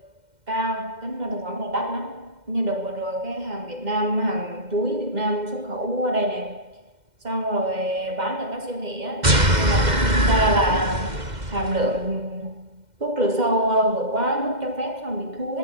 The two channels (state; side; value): late; left; 2.1 ms